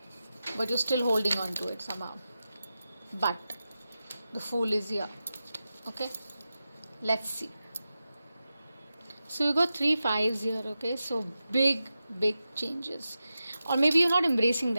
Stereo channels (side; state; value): both; inverted; correlation -0.92